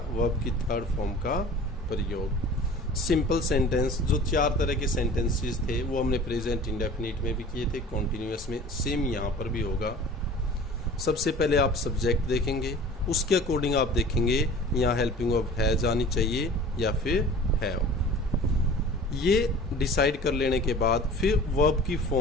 की थर्ड फॉर्म का प्रयोग। सिंपल सेंटेंस, जो 4 तरह के सेंटेंसेस थे वो हमने प्रेजेंट इंडेफिनिट में भी किए थे, कॉन्टिन्यूअस में, सेम यहाँ पर भी होगा। सबसे पहले आप सब्जेक्ट देखेंगे, उसके अकॉर्डिंग आप देखेंगे यहाँ हेल्पिंग वर्ब हैज आनी चाहिए या फिर हैव। ये डिसाइड कर लेने के बाद फिर वर्ब की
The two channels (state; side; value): normal; both; correlation 0.43